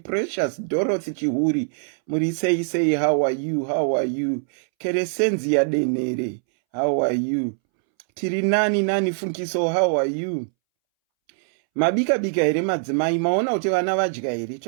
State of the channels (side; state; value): left; silent; 64 dB below the other